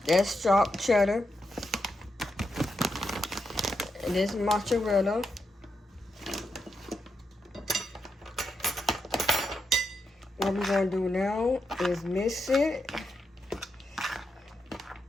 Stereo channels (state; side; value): normal; both; correlation 0.84